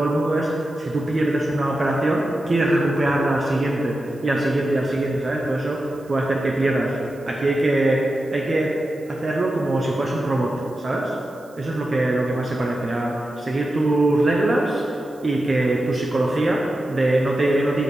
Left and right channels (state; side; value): noise; right; hiss, 28 dB below the sound